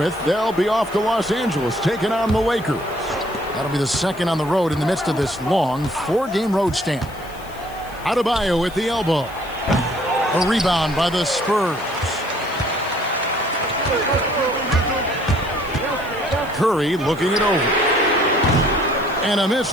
they'll be off to Los Angeles, taking on the Lakers. That'll be the second on the road in the midst of this long 4-game road stand. Adebayo with the elbow. A rebound by the Spurs. Curry looking it over. And a miss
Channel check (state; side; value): noise; left; hiss, 22 dB below the sound